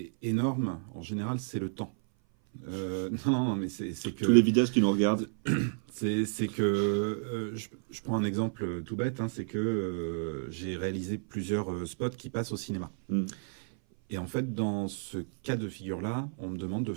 énorme. En général, c'est le temps. Non, mais c'est que tous les vidéastes qui nous regardent, c'est que je prends un exemple tout bête, c'est que j'ai réalisé plusieurs spots qui passent au cinéma. Et en fait, dans ce cas de figure-là, on me demande de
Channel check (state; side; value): silent; left; 56 dB below the other